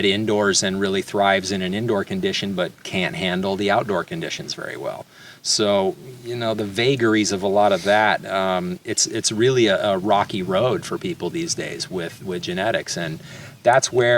indoors and really thrives in an indoor condition but can't handle the outdoor conditions very well. So, you know, the vagaries of a lot of that, it's really a rocky road for people these days with genetics. And that's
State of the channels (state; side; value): identical; both; correlation 1.00